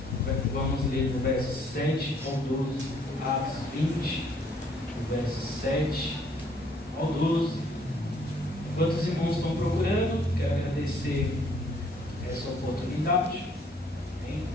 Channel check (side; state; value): both; normal; correlation 0.64